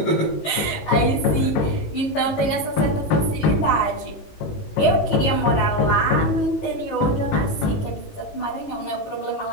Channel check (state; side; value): late; right; 18 ms